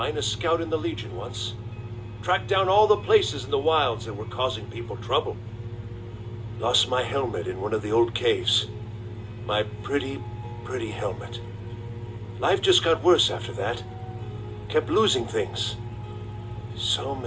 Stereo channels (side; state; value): both; identical; correlation 1.00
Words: scout in the Legion once. Tracked down all the places in the wilds that were causing people trouble. Lost my helmet in one of the old caves. My pretty, pretty helmet. Life just got worse after that. Kept losing things. So